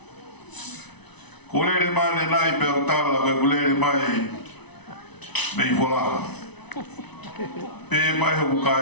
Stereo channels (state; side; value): late; right; 0.99 ms